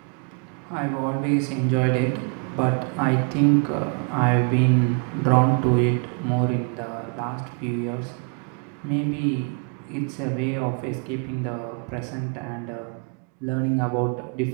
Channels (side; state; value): left; quieter; 39.6 dB